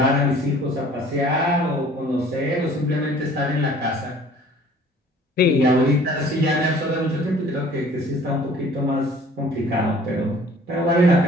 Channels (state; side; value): normal; both; correlation 0.52